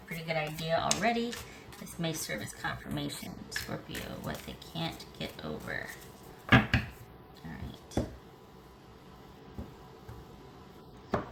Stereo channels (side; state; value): both; identical; correlation 1.00